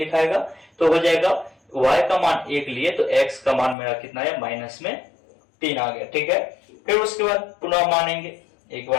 तो हो जाएगा y का मान 1 लिए तो x का मान मेरा कितना है, माइनस में 3 आ गया, ठीक है। फिर उसके बाद पुनः मानेंगे, एक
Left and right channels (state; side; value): drops out; right; at 3.8 s